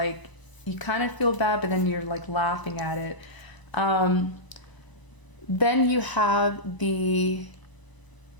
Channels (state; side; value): late; right; 1.0 ms